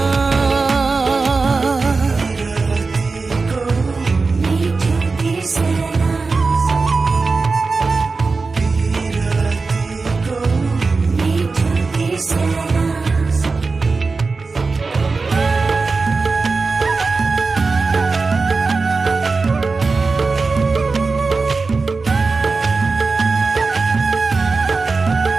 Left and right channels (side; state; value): left; quieter; 4.1 dB